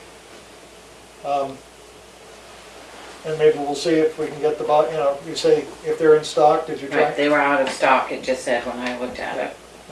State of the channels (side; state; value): both; identical; correlation 1.00